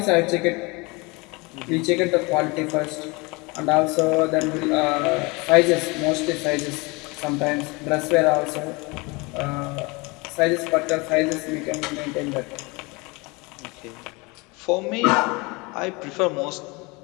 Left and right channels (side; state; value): right; quieter; 26.5 dB